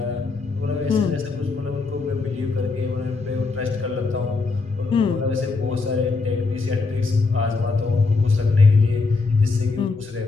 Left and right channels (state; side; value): quieter; right; 4.0 dB